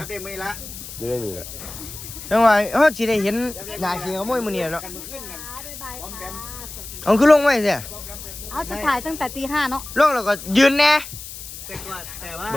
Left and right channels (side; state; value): left; noise; hiss, 12 dB below the sound